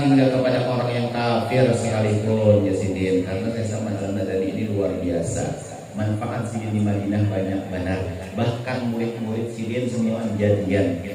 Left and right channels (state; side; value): identical; both; correlation 1.00